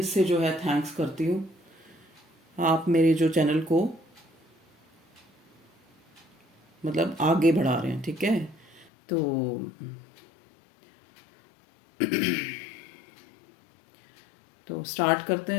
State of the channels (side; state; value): right; drops out; at 8.9 s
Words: से जो है थैंक्स करती हूँ। आप मेरे जो चैनल को मतलब आगे बढ़ा रहे हैं, ठीक है। तो स्टार्ट करते हैं